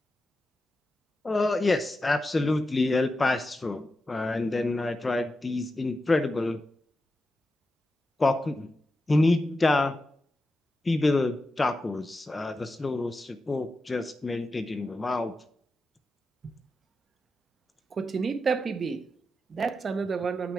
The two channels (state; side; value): normal; both; correlation 0.90